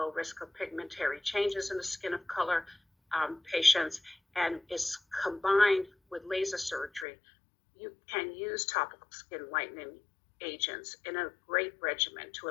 risk of pigmentary changes in the skin of color patients and is combined with laser surgery. You can use topical skin lightening agents in a great regimen to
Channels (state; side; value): drops out; right; at 7.1 s